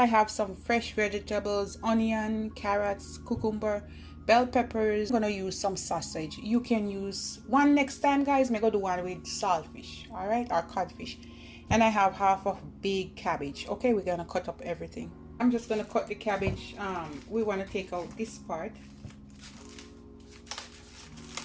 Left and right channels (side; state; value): both; identical; correlation 1.00